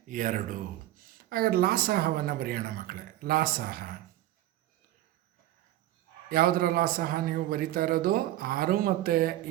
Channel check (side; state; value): left; quieter; 14.9 dB